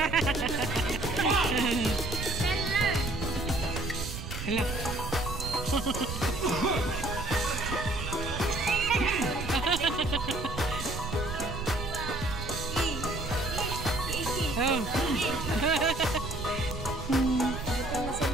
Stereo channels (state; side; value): noise; right; rumble, 7 dB below the sound